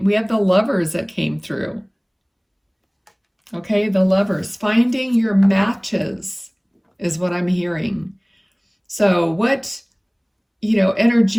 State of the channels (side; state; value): both; identical; correlation 1.00